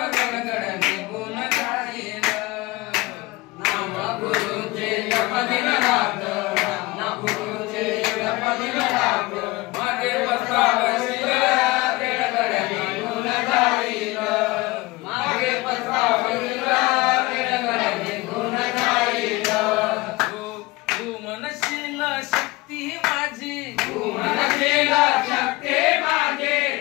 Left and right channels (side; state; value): right; quieter; 22.2 dB